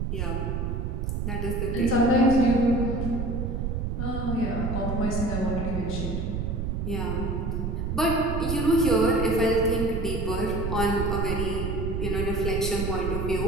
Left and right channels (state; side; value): noise; right; rumble, 1 dB below the sound